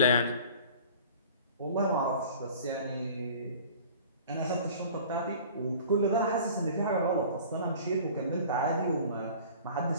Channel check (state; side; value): inverted; both; correlation -0.44